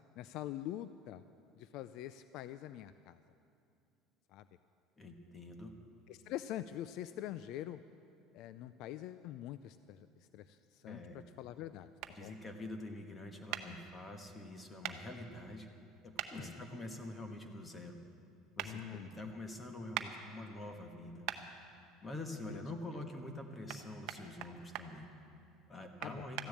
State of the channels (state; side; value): normal; both; correlation 0.40